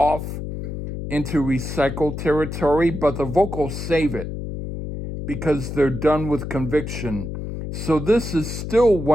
into recycled territory, but the vocals save it because they're done with conviction. So this is still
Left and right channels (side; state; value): left; noise; hum, 6 dB below the sound